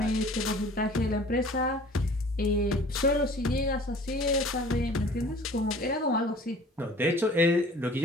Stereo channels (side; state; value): both; normal; correlation 0.48